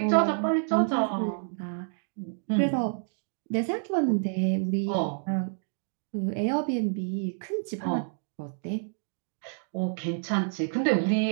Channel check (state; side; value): silent; left; digital silence